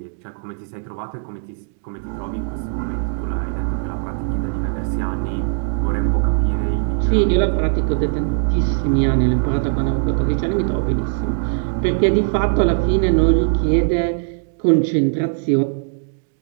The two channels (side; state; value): left; silent; digital silence